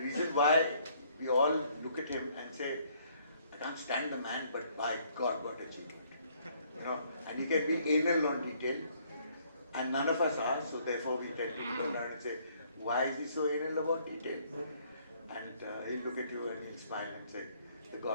why we all look at him and say, I can't stand the man, but by God, what achievement. And he can be anal on detail, and none of us are, so therefore we tend to go around and say, why is he so anal about detail? And he'll look at you and he'll smile and say, the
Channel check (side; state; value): both; inverted; correlation -0.64